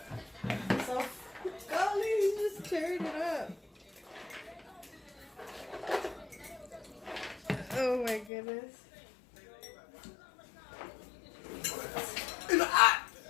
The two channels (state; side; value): drops out; right; at 8.3 s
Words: So, golly, just turn it up. Oh my goodness. It's hot.